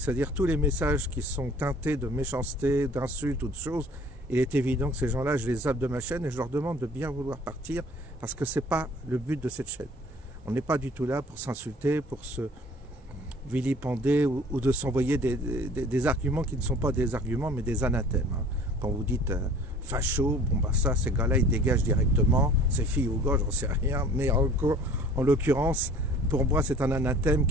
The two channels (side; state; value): both; normal; correlation 0.50